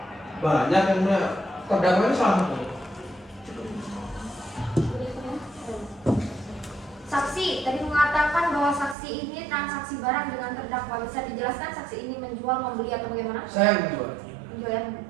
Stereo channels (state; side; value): drops out; left; at 9.0 s